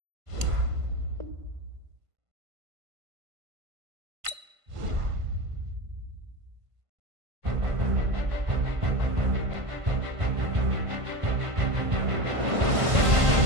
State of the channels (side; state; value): left; late; 1.5 ms